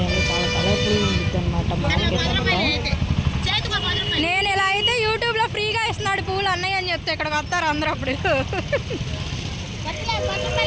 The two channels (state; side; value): identical; both; correlation 1.00